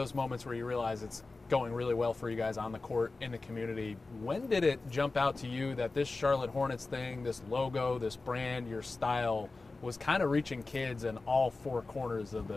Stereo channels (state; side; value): quieter; right; 3.6 dB